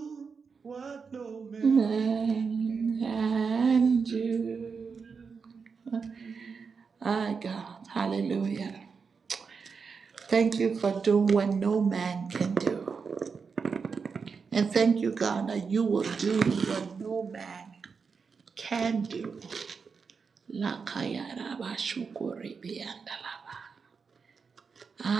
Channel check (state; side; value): quieter; left; 5.4 dB